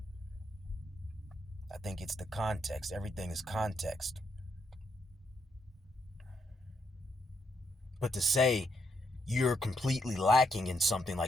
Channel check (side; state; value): both; normal; correlation 0.78